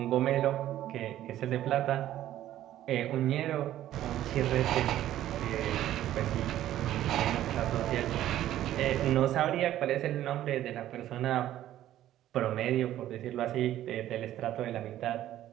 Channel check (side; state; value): left; quieter; 12.9 dB